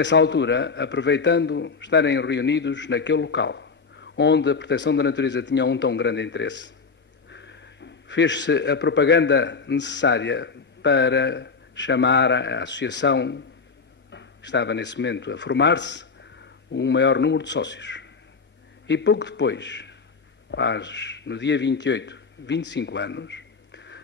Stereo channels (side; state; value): right; quieter; 4.9 dB